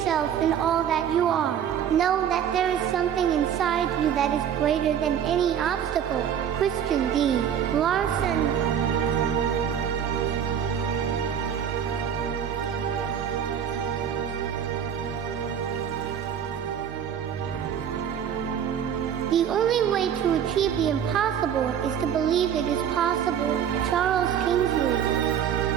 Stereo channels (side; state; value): left; quieter; 8.8 dB